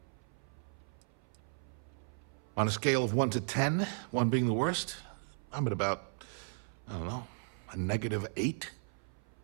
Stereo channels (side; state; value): left; silent; 54 dB below the other